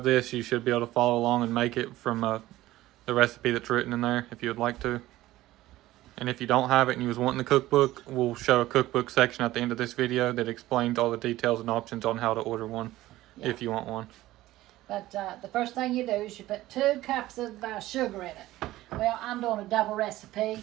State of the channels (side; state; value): left; quieter; 16.2 dB